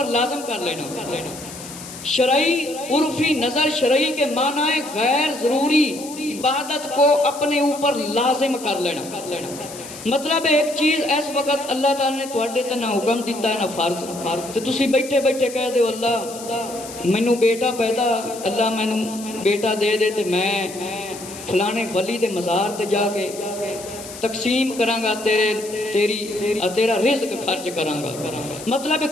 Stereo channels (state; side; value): noise; left; hiss, 14 dB below the sound